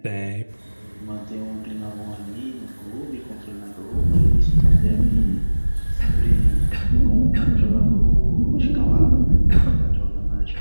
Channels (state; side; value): inverted; both; correlation -1.00